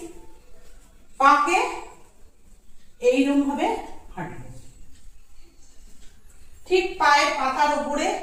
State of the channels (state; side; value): identical; both; correlation 1.00